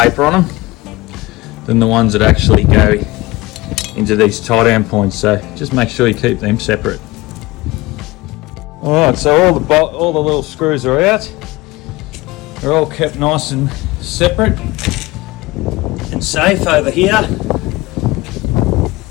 on them than the ones that actually go into these tie down points. So just make sure you keep them separate. Alright, so all the little screws are out. They're all kept nice and separate and safe over here.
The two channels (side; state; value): right; quieter; 20.7 dB